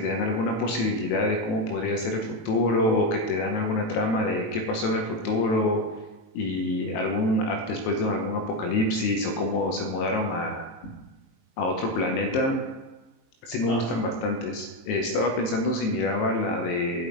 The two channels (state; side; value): late; right; 19 ms